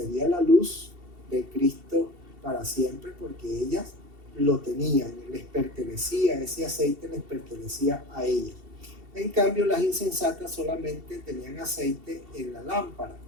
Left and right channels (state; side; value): late; left; 2.7 ms